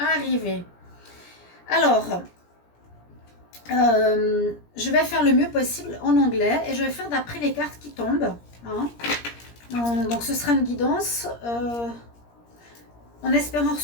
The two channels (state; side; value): late; right; 17 ms